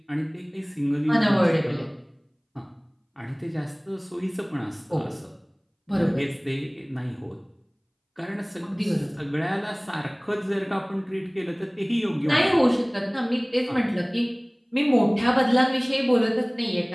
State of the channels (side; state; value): both; identical; correlation 1.00